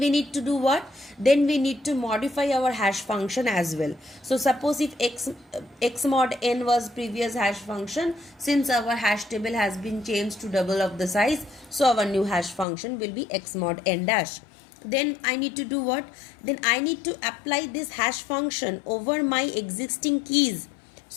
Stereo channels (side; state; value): right; drops out; at 12.7 s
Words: need to do what? Then we need to modify our hash function as well. So suppose if x mod n was previous hash function, since our hash table has been changed to double of the size, so our new hash function will be x mod n dash. Then I need to do what? Then I need to apply this hash function over my existing keys